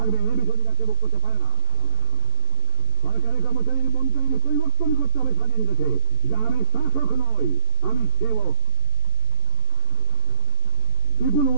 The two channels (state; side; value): late; right; 13 ms